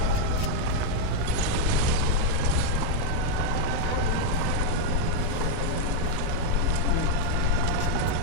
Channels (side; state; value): both; different; correlation 0.00